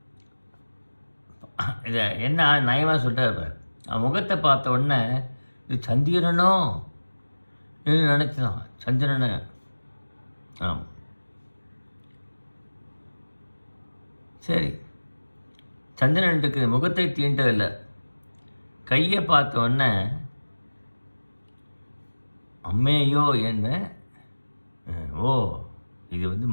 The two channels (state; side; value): inverted; both; correlation -1.00